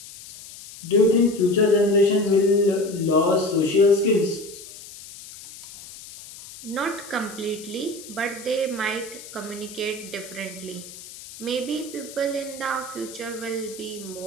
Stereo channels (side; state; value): left; noise; hiss, 16 dB below the sound